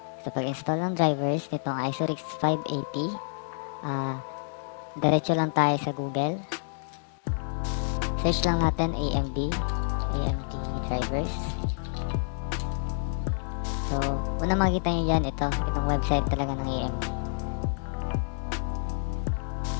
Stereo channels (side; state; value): right; silent; digital silence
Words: So, pag-install ng drivers nitong Isurix 580, diretso lang tayo sa Google. Search lang natin AMD drivers. So, una makikita nyo yan, itong website talaga ng AMD.